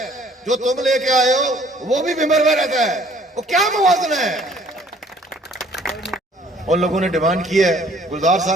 जो तुम लेके आए हो वो भी भिंबर में रहता है, वो क्या मुवाजना है? उन लोगों ने डिमांड की है, गुलजार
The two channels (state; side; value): normal; both; correlation 0.58